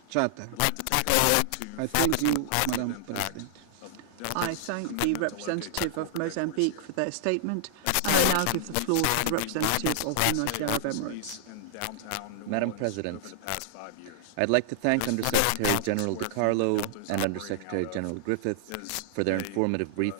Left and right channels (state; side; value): different; both; correlation -0.01